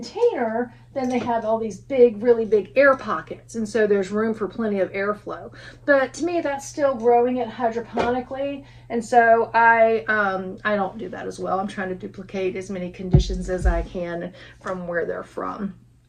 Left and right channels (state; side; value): identical; both; correlation 1.00